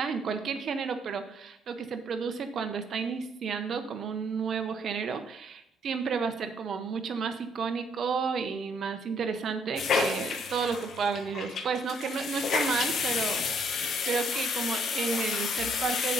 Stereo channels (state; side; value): normal; both; correlation 0.68